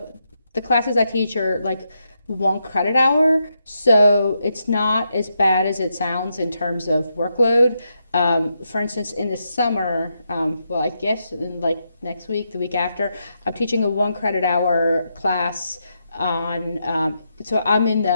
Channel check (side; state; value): both; inverted; correlation -0.82